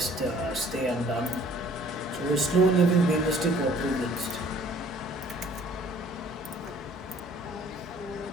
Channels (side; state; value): both; normal; correlation 0.55